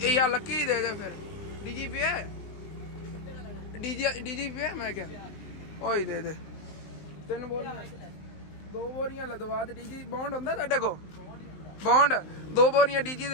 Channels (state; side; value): late; right; 19 ms